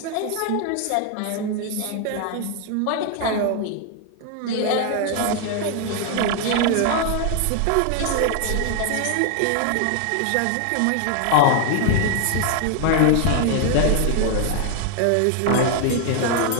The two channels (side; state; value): both; different; correlation 0.00